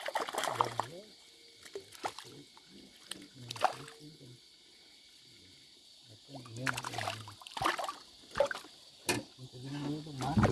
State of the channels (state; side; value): identical; both; correlation 1.00